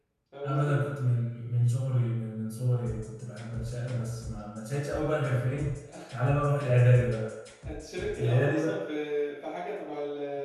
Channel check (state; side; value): identical; both; correlation 1.00